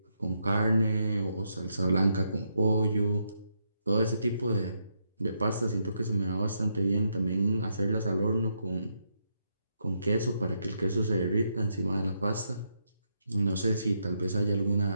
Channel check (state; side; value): inverted; both; correlation -0.79